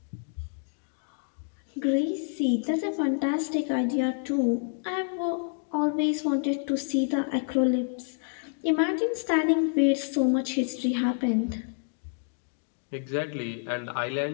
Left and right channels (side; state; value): right; silent; 59 dB below the other